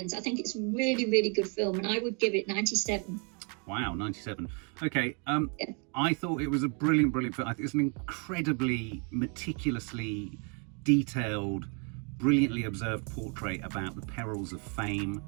I think it's a really, really good film, and I would give it 97. Wow, 97. Okay, I thought it was a brilliant film. I think it's an incredibly meticulously detailed, brilliantly observed portrait about the perils of fame,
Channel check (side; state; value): left; quieter; 36.9 dB